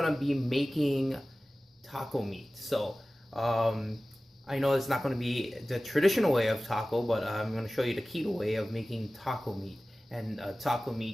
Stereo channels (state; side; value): normal; both; correlation 0.97